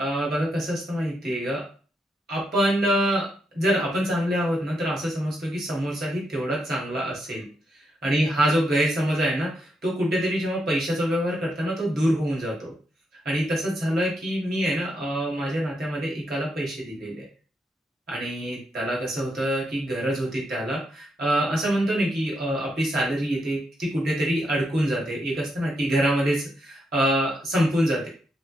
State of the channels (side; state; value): both; normal; correlation 0.81